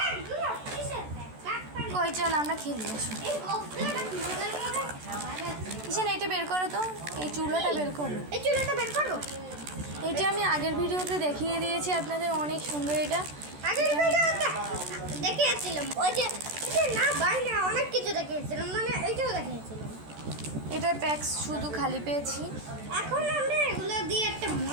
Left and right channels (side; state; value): left; late; 14 ms